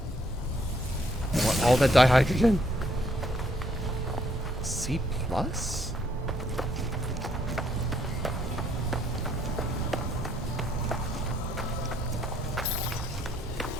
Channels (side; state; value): both; normal; correlation 0.68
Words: I want all that dihydrogen. C plus?